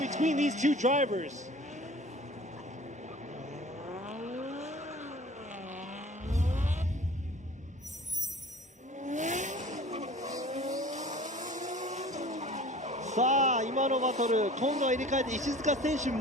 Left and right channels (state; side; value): normal; both; correlation 0.44